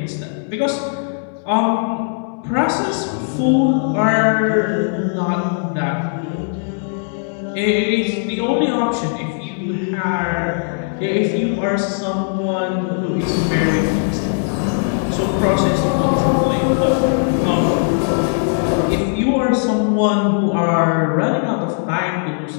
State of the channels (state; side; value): silent; right; 67 dB below the other